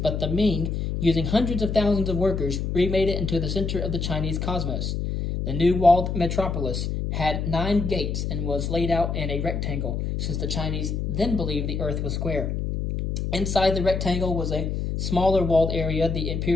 the Ming, using hundreds of thousands of workers, remade it into the center of the Chinese cosmos. The new walled metropolis had 9 gates and was laid out in a rectangle, since the Chinese then believed the earth was square. Inside the rectangle was a smaller walled area, the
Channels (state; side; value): noise; left; hum, 2 dB below the sound